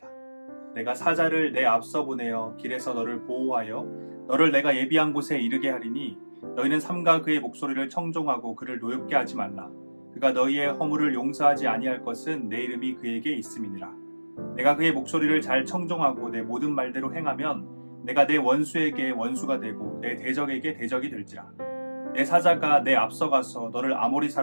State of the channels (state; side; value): inverted; both; correlation -1.00